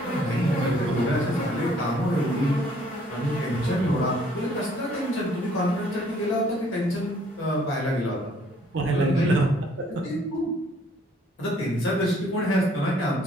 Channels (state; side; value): normal; both; correlation 0.61